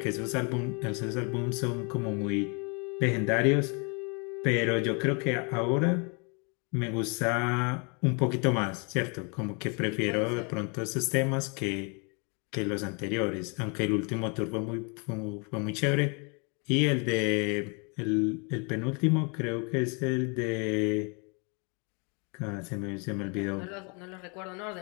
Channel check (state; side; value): quieter; right; 34.4 dB